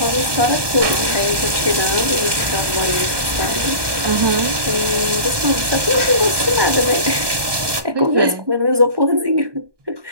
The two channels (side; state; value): left; late; 1.2 ms